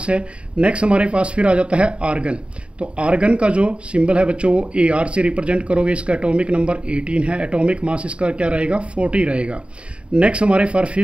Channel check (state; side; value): late; left; 0.057 ms